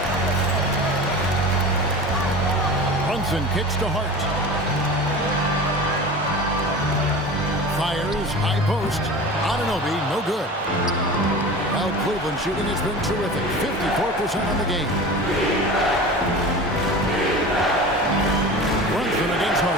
Brunson kicks to Hart. Fires, high post. Anunoby, no good. Well, Cleveland shooting has been terrific. 54% on the game. Brunson against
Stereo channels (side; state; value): both; normal; correlation 0.34